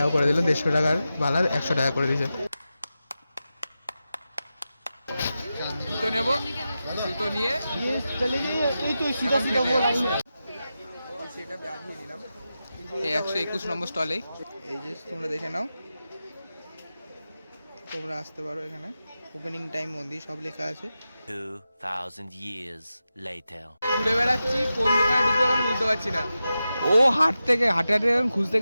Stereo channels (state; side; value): inverted; both; correlation -0.92